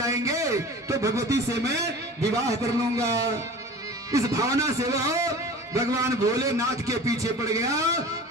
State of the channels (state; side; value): normal; both; correlation 0.39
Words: तो भगवती से मैं विवाह कर लूंगा। इस भावना से वह भगवान भोलेनाथ के पीछे पड़ गया